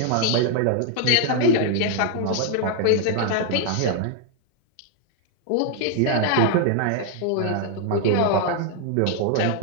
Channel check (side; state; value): both; different; correlation 0.00